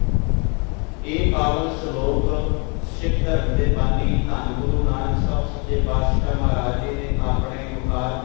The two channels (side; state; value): right; quieter; 33.6 dB